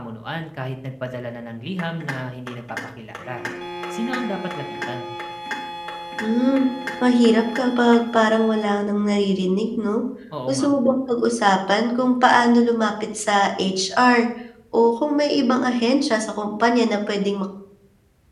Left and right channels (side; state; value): both; identical; correlation 1.00